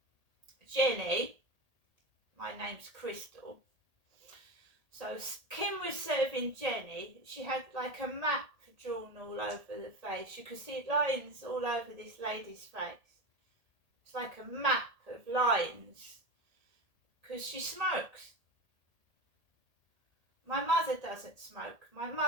Jenny, my name's Crystal. So Kim was serving Jenny. She had like a map drawn all over the face. You could see lines all over this lady's face. It's like a map of lines because she smokes. My mother doesn't smoke. My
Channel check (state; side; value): late; left; 1.8 ms